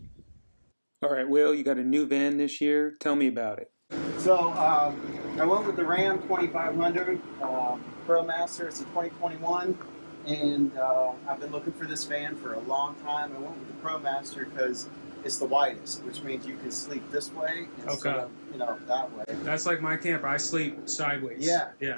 Alright, Will, you got a new van this year. Tell me about it. So I went with the Ram 2500 ProMaster. It's a 2021, and I've been looking for this van for a long time. I went with the ProMaster because it's the widest, which means you can sleep this way instead of, that way. That's like my camper. I sleep sideways. Yeah.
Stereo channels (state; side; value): inverted; both; correlation -1.00